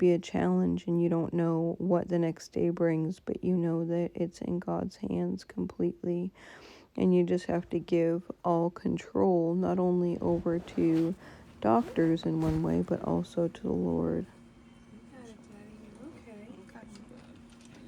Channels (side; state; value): both; identical; correlation 1.00